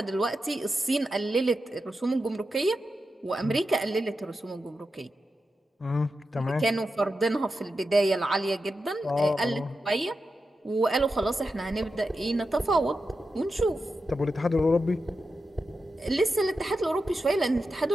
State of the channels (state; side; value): normal; both; correlation 0.90